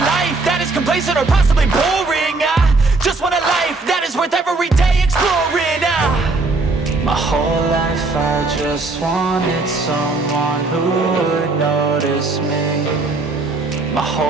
life that is complacent or possibly boring. I just want a life that is worth every day exploring. My whole life I just wanted someone who would notice me. My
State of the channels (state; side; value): quieter; left; 3.5 dB